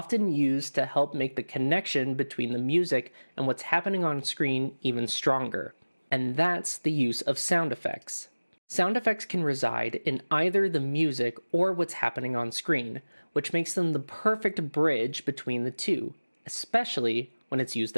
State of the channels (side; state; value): both; inverted; correlation -1.00